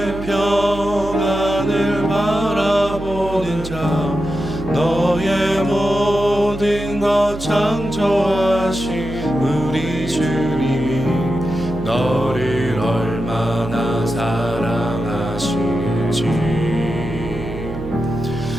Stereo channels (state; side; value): noise; right; hum, 10 dB below the sound